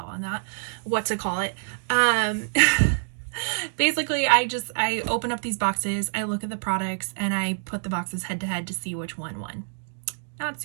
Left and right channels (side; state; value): left; silent; digital silence